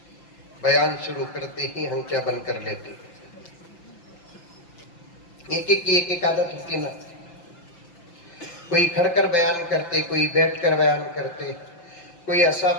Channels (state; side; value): late; right; 5.8 ms